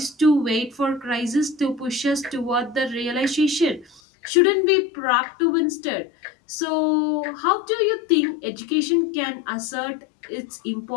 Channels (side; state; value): right; drops out; at 4.0 s